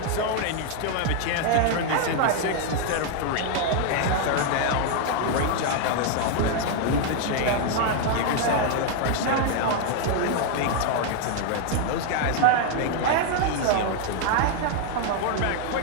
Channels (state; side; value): different; both; correlation 0.00